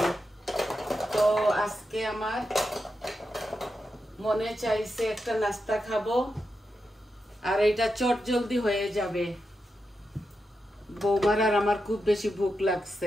তো আজকে আমার মনে চাইছে একটা নাস্তা খাবো, আর এটা চট জলদি হয়ে যাবে। বৌমার আর আমার খুব বেশি ভুক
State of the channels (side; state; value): both; normal; correlation 0.88